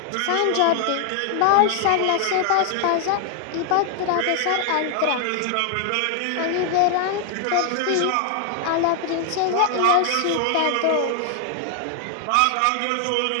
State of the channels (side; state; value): both; different; correlation 0.00